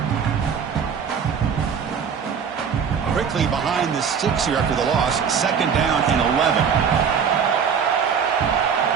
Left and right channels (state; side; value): quieter; left; 6.9 dB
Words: Quickly behind the sticks here after the loss. 2nd down and 11.